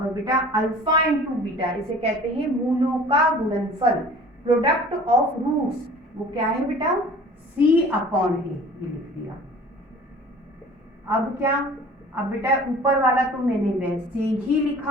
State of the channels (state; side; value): normal; both; correlation 0.46